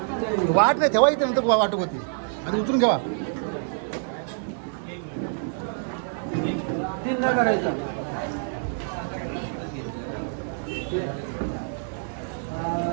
वाट नाही ठेवा. इथे नंतर वाटप होती. आणि उतरून घ्यावा. 3 नाही करायचा.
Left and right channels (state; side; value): silent; left; digital silence